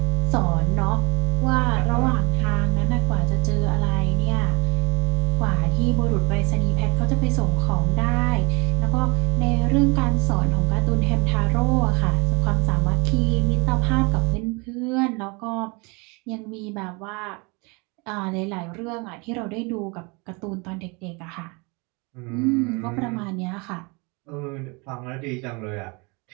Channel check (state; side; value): quieter; left; 29.4 dB